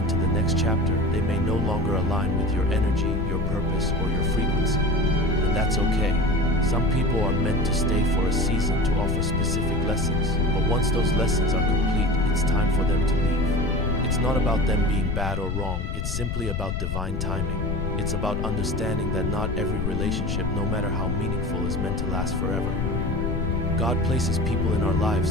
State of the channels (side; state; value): left; noise; rumble, 1 dB below the sound